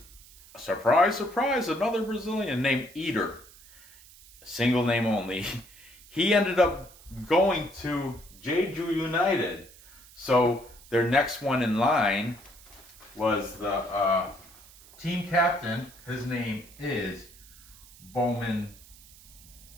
surprise, surprise, another Brazilian named Eater. Single name only. He ended up going to Daegu United. So their next one in line was the team captain. His name is Bo Min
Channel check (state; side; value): noise; right; hiss, 22 dB below the sound